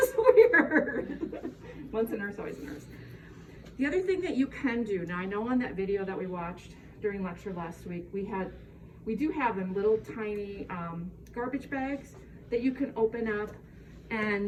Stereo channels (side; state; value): both; identical; correlation 1.00